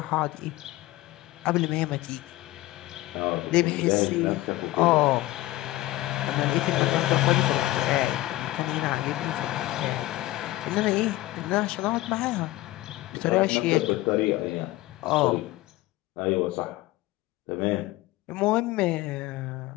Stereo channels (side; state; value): right; quieter; 17.5 dB